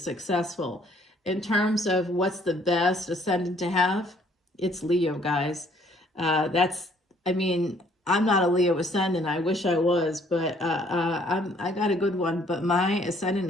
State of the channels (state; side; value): normal; both; correlation 0.62